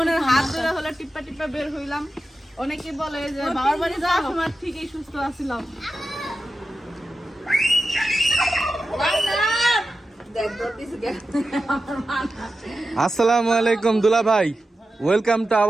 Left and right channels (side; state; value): both; normal; correlation 0.91